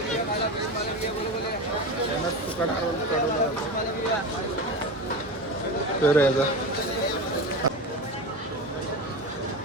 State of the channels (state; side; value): normal; both; correlation 0.25